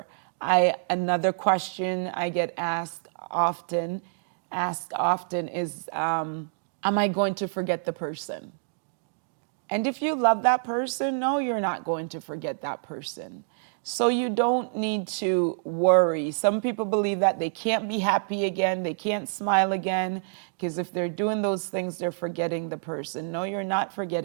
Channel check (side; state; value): left; silent; digital silence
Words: Another question I get asked often is, am I going to forget the person? And if you love that person, no, you're not going to forget that person. So you don't need to worry. Some people believe that they can't be happy again, they can't smile again, because if they're doing those things, they're forgetting the person. No, you're not